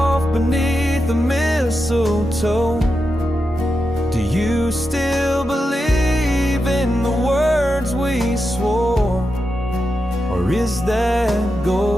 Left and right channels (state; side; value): normal; both; correlation 0.88